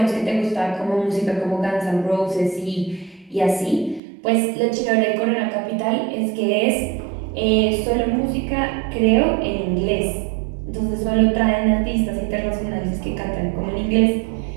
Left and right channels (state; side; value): drops out; left; at 4.0 s